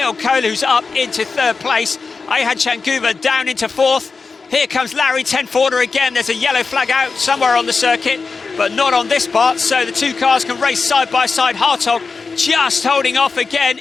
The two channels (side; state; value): right; quieter; 4.6 dB